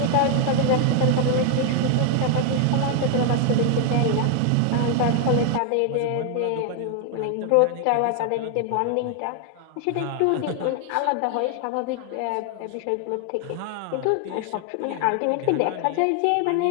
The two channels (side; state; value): both; different; correlation 0.00